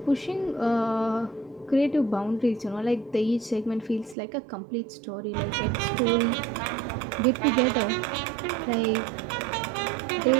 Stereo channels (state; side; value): drops out; left; at 4.2 s